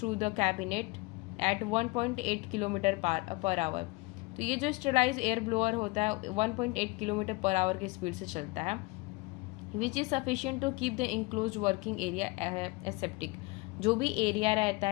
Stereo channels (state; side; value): quieter; right; 23.7 dB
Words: the cabinet at 1.8 kilometre per hour. तो ये जो स्टरलाइज्ड एयर ब्लोअर होता है 1.8 किलोमीटर पर आवर की स्पीड से चलता है, which is sufficient to keep the enclose working area aseptic. जो भी एरिया रहता